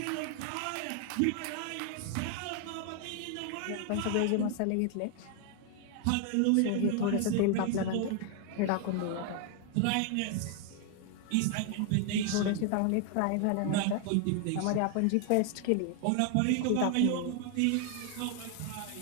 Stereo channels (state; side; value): different; both; correlation 0.00